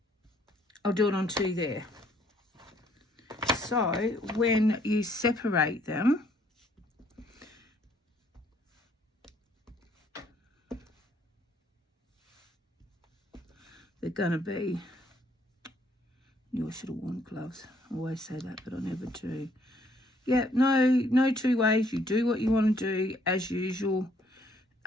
I'll do it on 2 there. So when you separate them, they're going to be, I should have worn gloves. I always say that, but I never do. Yeah, no 2 ways. You do what you want to do as usual.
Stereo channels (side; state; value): both; normal; correlation 0.65